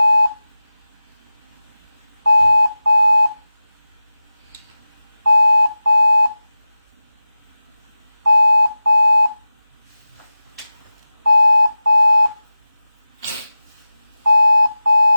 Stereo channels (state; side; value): inverted; both; correlation -0.96